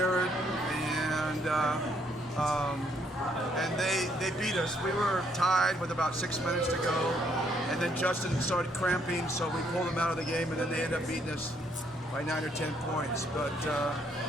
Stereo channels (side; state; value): both; normal; correlation 0.70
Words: and they beat us. We were tied with about 6 minutes to go, and then Justin started cramping, so we pulled him out of the game, and then they ended up beating us by 9 or 10 points. But